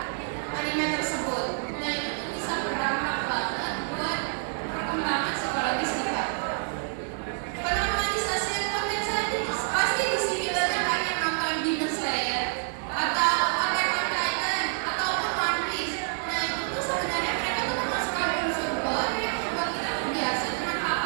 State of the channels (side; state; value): left; silent; 59 dB below the other